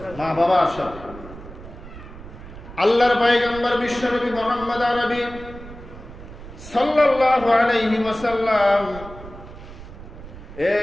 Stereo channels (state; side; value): noise; right; rumble, 15 dB below the sound